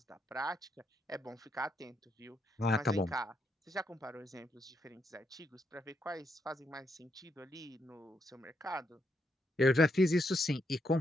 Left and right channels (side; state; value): both; normal; correlation 0.78